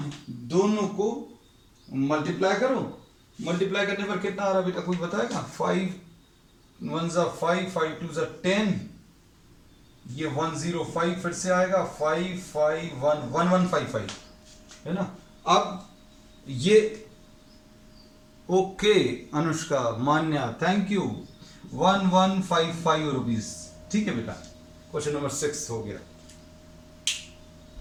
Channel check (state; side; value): identical; both; correlation 1.00